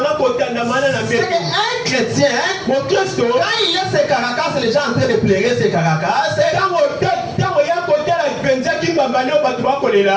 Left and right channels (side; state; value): both; identical; correlation 1.00